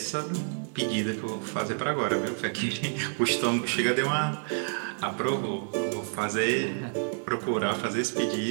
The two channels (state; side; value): silent; left; digital silence